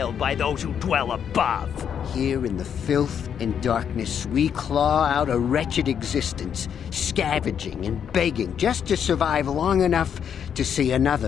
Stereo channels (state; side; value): quieter; right; 8.2 dB